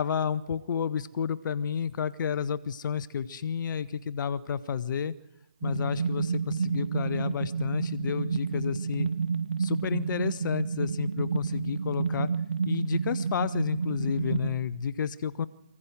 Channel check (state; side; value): inverted; both; correlation -0.71